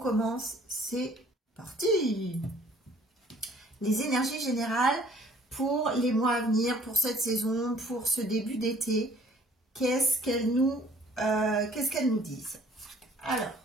c'est parti. Les énergies générales pour les mois à venir, pour cette saison, pour ce début d'été, qu'est-ce qu'elles nous disent? Alors,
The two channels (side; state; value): both; normal; correlation 0.56